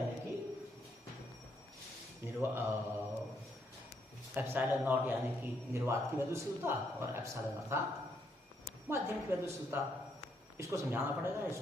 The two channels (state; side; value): normal; both; correlation 0.74